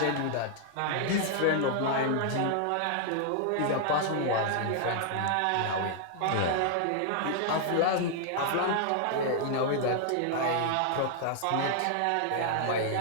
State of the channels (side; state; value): both; different; correlation -0.01